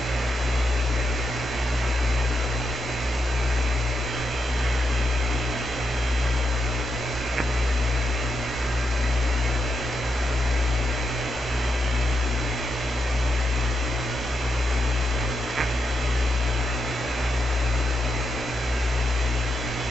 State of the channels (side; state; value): both; normal; correlation 0.83